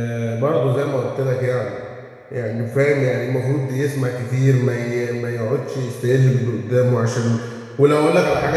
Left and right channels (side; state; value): both; identical; correlation 1.00